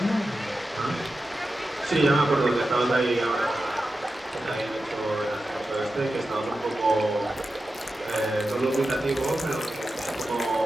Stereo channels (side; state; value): both; normal; correlation 0.92